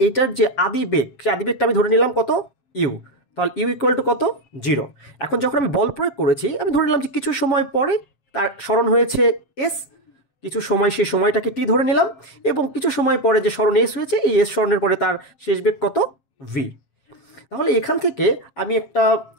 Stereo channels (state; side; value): late; right; 7.5 ms